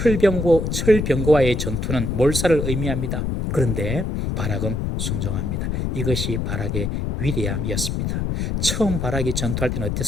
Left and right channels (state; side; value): noise; left; rumble, 1 dB below the sound